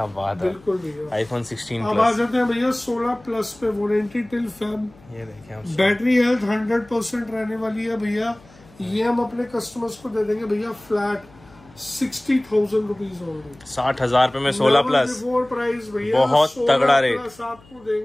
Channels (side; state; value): left; noise; hum, 26 dB below the sound